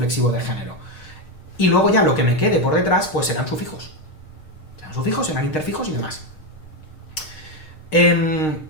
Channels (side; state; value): right; late; 6.5 ms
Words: de género. Y luego ya lo que me quede por detrás, pues serán sufijos. Serán sufijos, serán interfijos y demás.